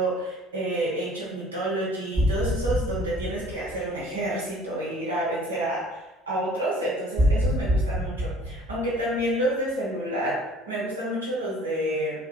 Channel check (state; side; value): normal; both; correlation 0.52